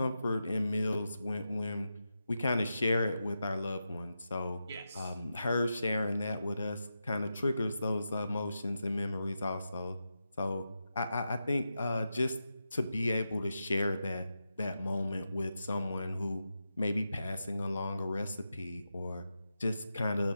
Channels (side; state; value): both; inverted; correlation -0.89